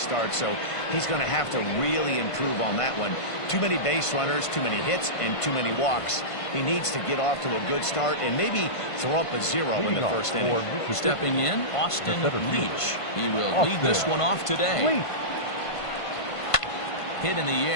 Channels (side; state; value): right; late; 1.5 ms